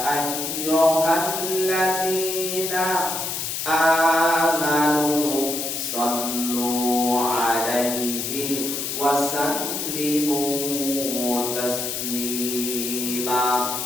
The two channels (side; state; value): left; noise; hiss, 3 dB below the sound